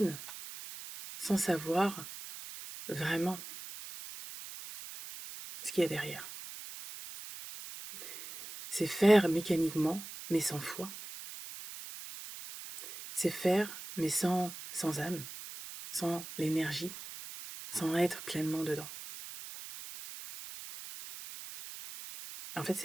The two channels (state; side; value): noise; right; hiss, 12 dB below the sound